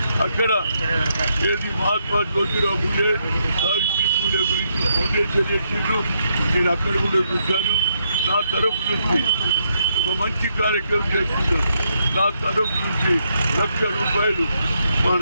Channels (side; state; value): both; inverted; correlation -0.78